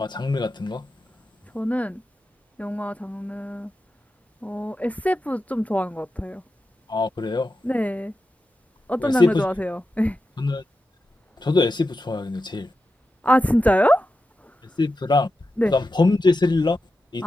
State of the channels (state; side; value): normal; both; correlation 0.90